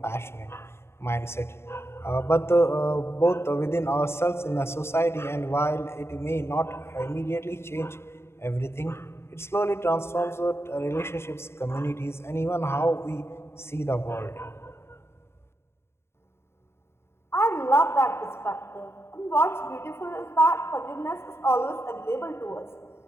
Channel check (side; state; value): right; late; 0.12 ms